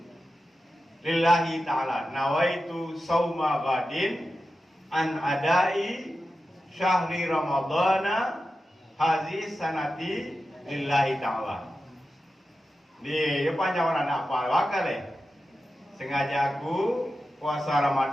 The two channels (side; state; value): both; normal; correlation 0.92